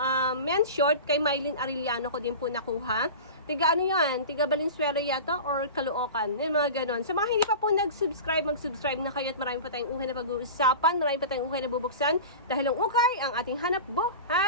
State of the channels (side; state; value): both; inverted; correlation -0.32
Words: men's short, kay Mylene Arellano ko din po nakuha. Tiga ano yan? Tiga Valenzuela yata or Caloocan? Yung mga ganon. Sa mga hindi pa po nag-subscribe, mag-subscribe na kayo at marami pa tayong uhay na pag-uusapan, marami pa tayong uhay na bubuksan dahil ang ukay ang ating hanap